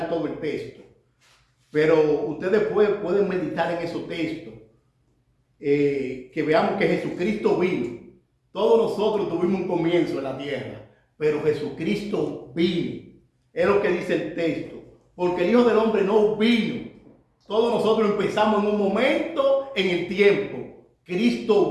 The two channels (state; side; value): identical; both; correlation 1.00